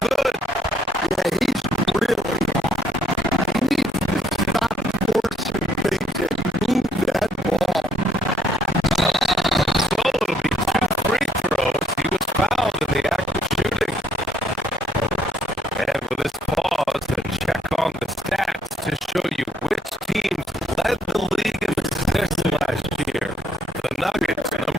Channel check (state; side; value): normal; both; correlation 0.68